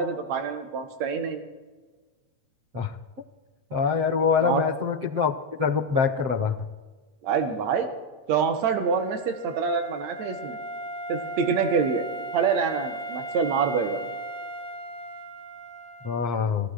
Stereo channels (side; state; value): left; late; 8.8 ms